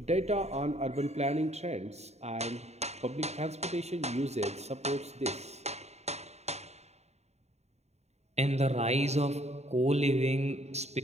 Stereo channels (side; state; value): left; late; 0.32 ms